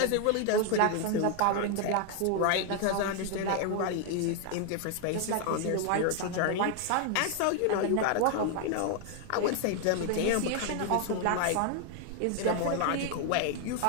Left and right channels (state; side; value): different; both; correlation 0.00